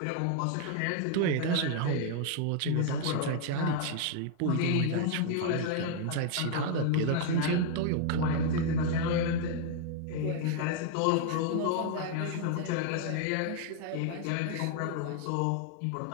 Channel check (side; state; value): both; different; correlation 0.00